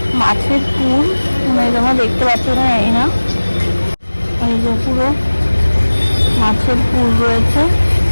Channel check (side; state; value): both; inverted; correlation -1.00